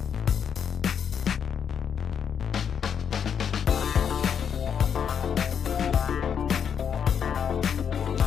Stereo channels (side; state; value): right; quieter; 7.7 dB